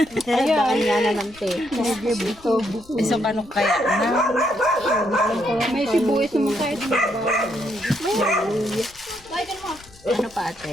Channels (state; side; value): noise; left; rumble, 24 dB below the sound